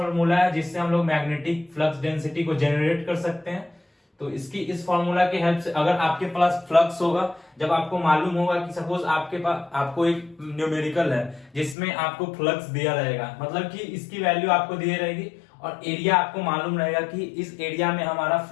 है जिससे हम लोग मैग्नेटिक फ्लक्स डेंसिटी को जनरेट कर सकते हैं। तो इसकी इस फॉर्मूला की हेल्प से अगर आपके पास फ्लक्स होगा, जब आपको मालूम होगा कि सपोज आपके पास आपको एक न्यूमेरिकल है जिसमें आपको फ्लक्स दिया रहेगा, मतलब कि इसकी वैल्यू आपको दी रहेगी और एरिया आपको मालूम रहेगा कि इस एरिया में हमारा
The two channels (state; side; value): drops out; right; at 11.8 s